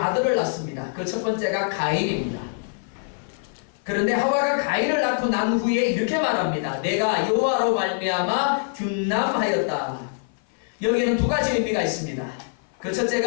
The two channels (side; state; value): right; silent; 56 dB below the other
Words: 낳습니다. 그 첫 번째가 가인입니다. 그런데 하와가 가인을 낳고 난 후에 이렇게 말합니다. 내가 여호와로 말미암아 둔남하였다. 여기에는 두 가지 의미가 있습니다. 그